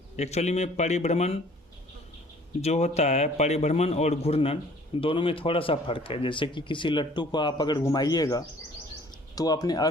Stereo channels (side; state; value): both; normal; correlation 0.54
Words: एक्चुअली में परिभ्रमण जो होता है, परिभ्रमण और घूर्णन दोनों में थोड़ा सा फर्क है। जैसे कि किसी लट्टू को आप अगर घुमाइएगा तो अपने